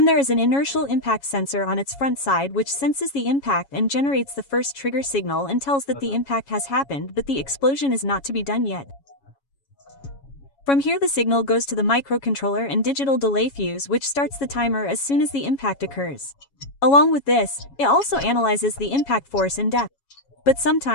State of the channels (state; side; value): late; right; 7.2 ms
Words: there is an inertial impact sensor on its front side which senses the impact and generates the first trigger signal and tells that the impact has happened, but the explosion is not to be done yet. From here the signal goes to the microcontroller and digital delay fuse, which starts the timer as soon as the impact occurs. Along with this, it also analyzes the impact force and depth. But